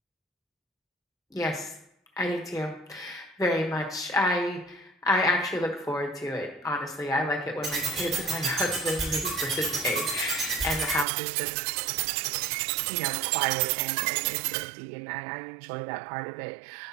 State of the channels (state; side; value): drops out; left; at 11.1 s